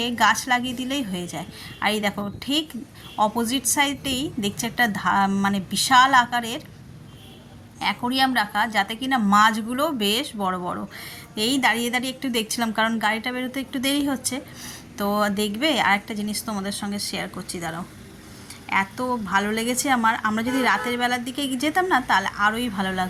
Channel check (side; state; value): both; identical; correlation 1.00